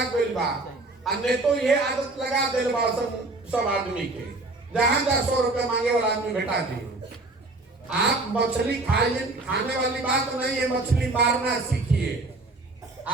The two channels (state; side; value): quieter; left; 3.1 dB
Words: गई बा। अन्य तो ये आदत लगा दिल बा सब आदमी के, जहां 100 रुपया मांगे वाला आदमी बेटा दी। आप मछली खाने वाली बात नहीं है, मछली मारना सीखिए।